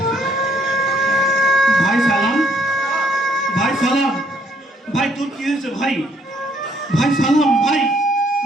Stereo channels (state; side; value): normal; both; correlation 0.66